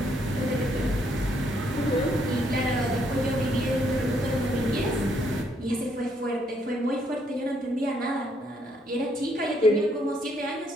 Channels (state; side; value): normal; both; correlation 0.71